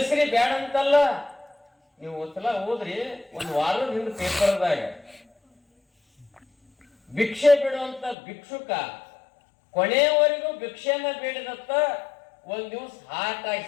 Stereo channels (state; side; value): drops out; right; at 8.2 s